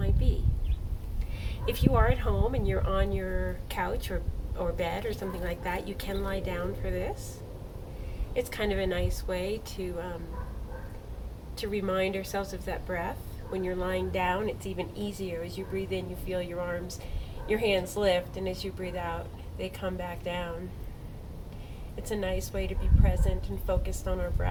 be. If you are at home and you're on your couch or bed or something like that, you can lie down for this. It's kind of a nice way to remind ourselves of that breath. When you're lying down, it's even easier. As you breathe in, you feel your hands lift, and as you breathe out, they come back down. It's a nice way to be present and focused on our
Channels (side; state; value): both; identical; correlation 1.00